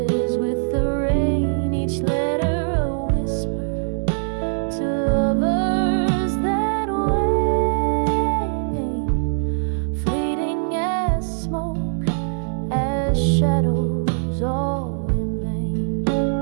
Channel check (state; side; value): silent; left; digital silence